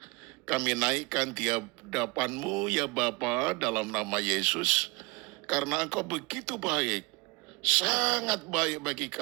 kami naikkan di hadapan-Mu ya Bapa dalam nama Yesus, karena Engkau begitu baik, sangat baik bagi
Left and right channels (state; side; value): quieter; left; 26.6 dB